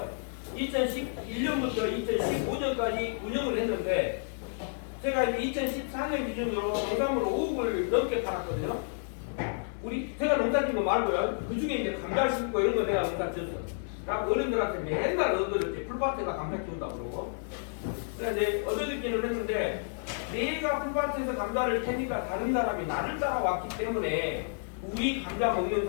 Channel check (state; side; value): silent; right; digital silence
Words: 2011년부터 2015년까지 운영을 했는데 제가 이제 2014년 기준으로 농산물을 5억을 넘게 팔았거든요. 제가 농사 짓는 거 말고요. 그 중에 이제 감자 심고 이런 거 내가 농사 지었어요. 그러니까 어른들한테 맨날 얻어졌지. 풀밭에다 감자 키운다고 그러고. 그래서 이제 얻어듣기는 했는데 내가 풀밭에서 감자를 캐니까 다른 사람이 나를 따라왔기 때문에 우리 감자 먹는